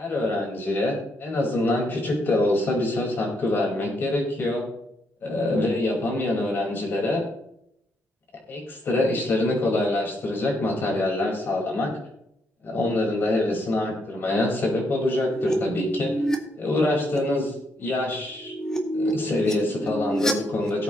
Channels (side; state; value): both; normal; correlation 0.76